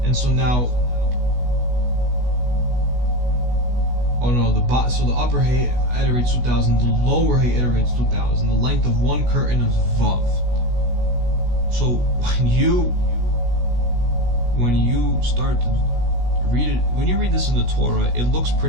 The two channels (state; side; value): late; left; 16 ms